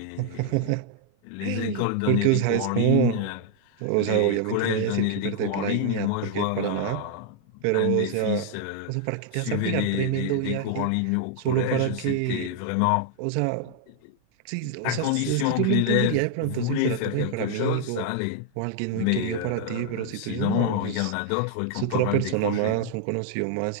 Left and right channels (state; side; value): different; both; correlation 0.00